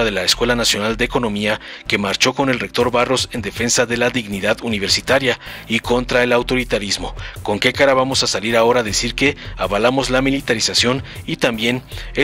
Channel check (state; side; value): identical; both; correlation 1.00